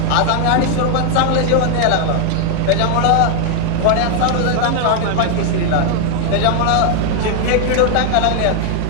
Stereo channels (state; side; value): different; both; correlation 0.00